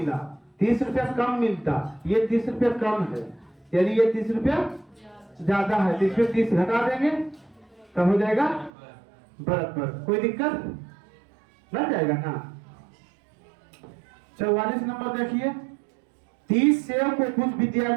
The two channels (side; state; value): left; drops out; at 8.7 s